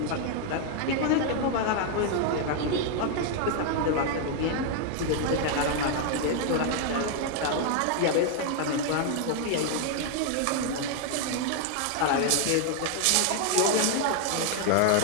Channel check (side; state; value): both; different; correlation 0.00